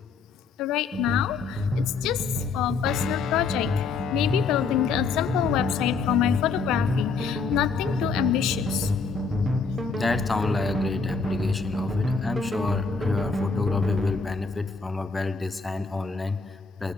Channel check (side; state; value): right; quieter; 4.7 dB